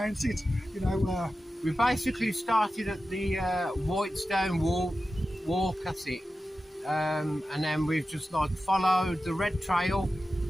it. We basically started at the Whitestone Walk, that's it. And then we've just followed the red trail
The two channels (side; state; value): both; normal; correlation 0.93